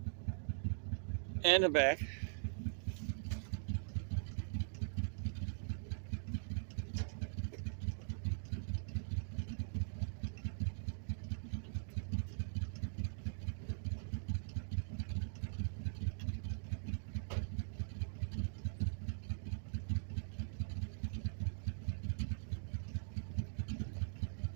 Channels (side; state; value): left; silent; digital silence